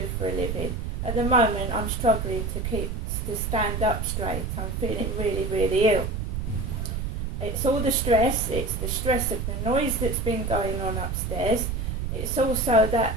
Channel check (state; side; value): noise; right; rumble, 3 dB below the sound